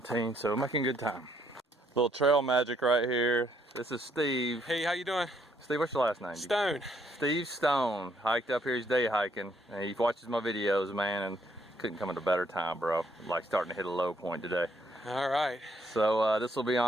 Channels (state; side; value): normal; both; correlation 0.70